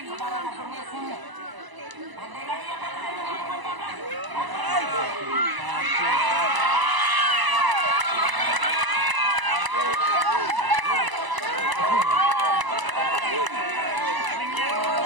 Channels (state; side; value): late; left; 1.0 ms